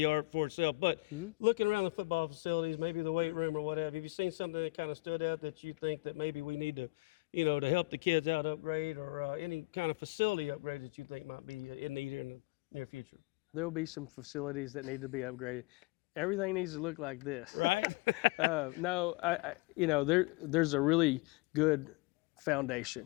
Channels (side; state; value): right; quieter; 24.6 dB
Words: for itself. But looking around the football facilities, maybe the weight room or whatever, have you seen something that kind of stood out that you think that maybe we need to, to help the kids out upgrade, or any kind of facility upgrade that you think might be in need here in the near future? There will be some facilities that need to be upgraded. Everything needs to look like this. Right? No, there's a really good foundation.